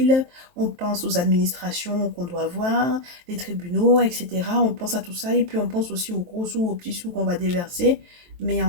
On pense aux administrations qu'on doit voir, les tribunaux, etc. On pense à tout ça et puis on pense aussi aux gros sous, aux petits sous qu'on va déverser. Mais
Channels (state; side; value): late; left; 23 ms